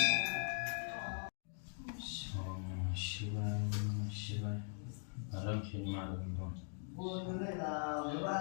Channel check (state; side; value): silent; right; 50 dB below the other